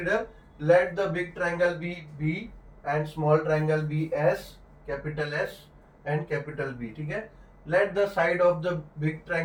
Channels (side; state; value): both; identical; correlation 1.00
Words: let the big triangle be B and small triangle be S, capital S and capital B, ठीक है। Let the side of the big